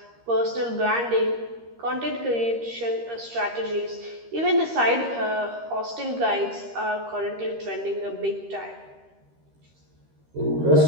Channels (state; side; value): late; left; 13 ms